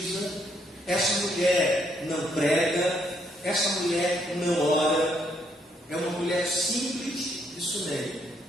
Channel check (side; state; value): both; normal; correlation 0.72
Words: essa mulher não prega, essa mulher não ora, é uma mulher simples de Sunem,